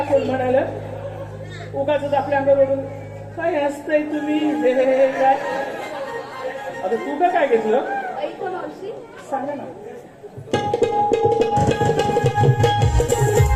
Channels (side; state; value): both; identical; correlation 1.00